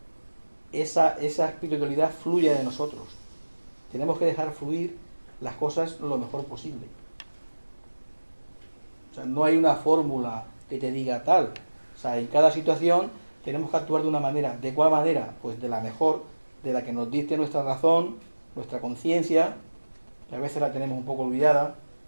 esa espiritualidad fluya de nosotros. Tenemos que dejar fluir las cosas lo mejor posible. O sea, no hay una fórmula que te diga tal. O sea, en cada situación tenemos que actuar de una manera. ¿De cuál manera? Pues de la mejor, de la que nos dicte nuestra razón, nuestra conciencia, que a veces la tenemos un poco olvidada,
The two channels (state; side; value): inverted; both; correlation -1.00